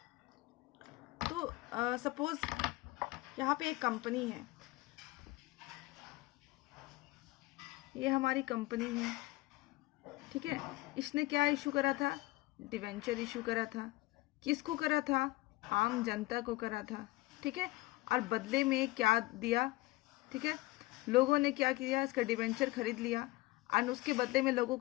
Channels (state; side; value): quieter; right; 20.6 dB